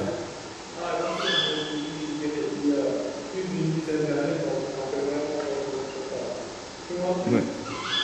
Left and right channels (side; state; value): both; identical; correlation 1.00